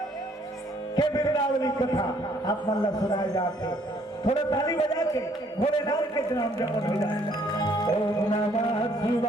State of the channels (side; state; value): both; normal; correlation 0.64